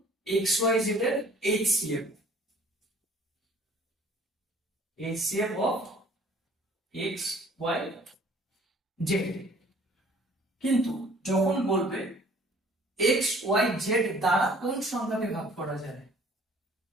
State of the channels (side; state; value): both; normal; correlation 0.54